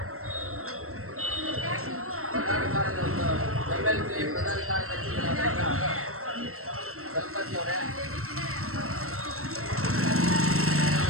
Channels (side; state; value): left; late; 0.63 ms